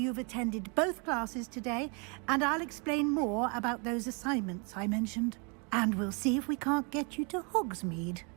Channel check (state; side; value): quieter; left; 34.0 dB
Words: attended both classes today, and I'll explain more about those assignments I mentioned. And we'll see if we can't get you to Hogsmeade